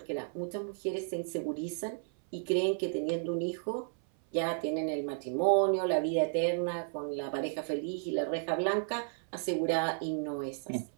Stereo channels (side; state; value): left; silent; 56 dB below the other